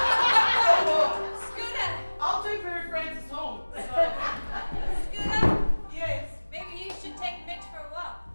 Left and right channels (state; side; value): inverted; both; correlation -1.00